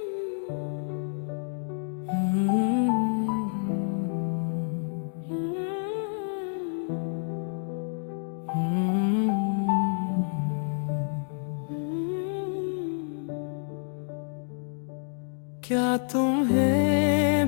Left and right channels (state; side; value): silent; right; digital silence